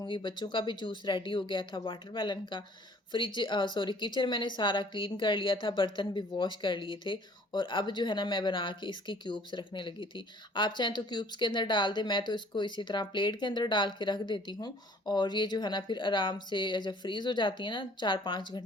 बच्चों का भी जूस रेडी हो गया था वाटरमेलन का। सॉरी, किचन मैंने सारा क्लीन कर लिया था, बर्तन भी वॉश कर लिए थे, और अब जो है ना मैं बना के इसकी क्यूब्स रखने लगी थी। आप चाहें तो क्यूब्स के अंदर डाल दें, मैं तो इसको इसी तरह प्लेट के अंदर डाल के रख देती हूँ। और ये जो है ना फिर आराम से जब फ्रीज़ हो जाती है ना 4-5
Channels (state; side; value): normal; both; correlation 0.55